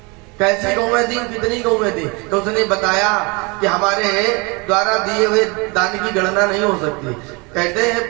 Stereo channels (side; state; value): left; quieter; 28.6 dB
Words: कैसी गौएं थी, कितनी गौएं थी? तो उसने बताया कि हमारे द्वारा दिए हुए दान की गणना नहीं हो सकती। कहते